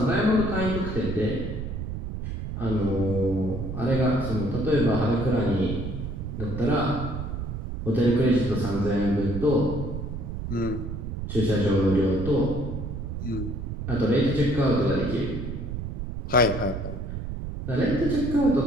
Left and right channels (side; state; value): right; noise; rumble, 6 dB below the sound